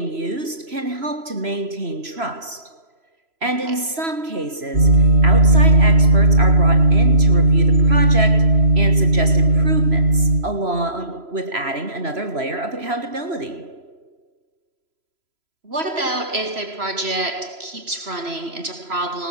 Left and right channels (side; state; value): left; late; 3.0 ms